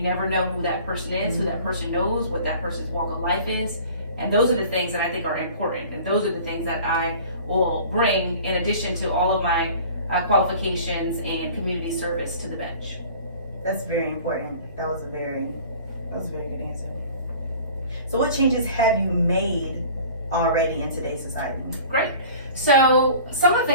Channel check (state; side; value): inverted; both; correlation -0.45